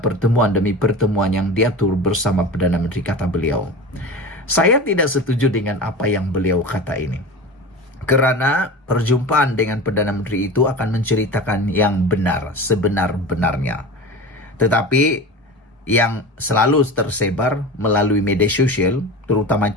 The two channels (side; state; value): both; normal; correlation 0.31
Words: pertemuan demi pertemuan yang diatur bersama Perdana Menteri, kata beliau. Saya tidak setuju dengan apa yang beliau kata ini. Kerana perjumpaan dengan Perdana Menteri itu akan menceritakan yang benar, sebenar-benarnya. Tetapi yang selalu tersebar melalui media sosial, terutama